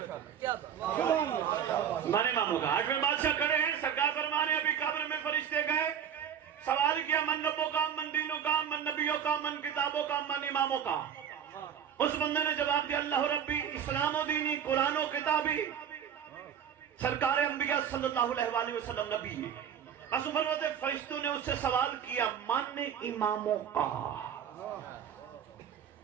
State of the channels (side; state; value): left; quieter; 8.6 dB